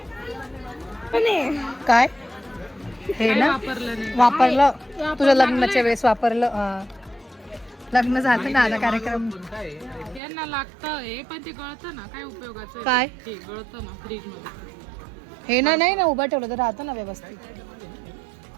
पण काय हे ना वापरलं तुझ्या लग्नाच्या वेळेस वापरलं लग्न झालं ना आता कार्यक्रम यांना लागतं हे पण ते गळतं ना काय उपयोगाचं आहे? काय ते गळतं ना फ्रीज मध्ये हे ना नाही ना उभं ठेवलं तर राहतं ना व्यवस्थित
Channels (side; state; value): left; drops out; at 10.2 s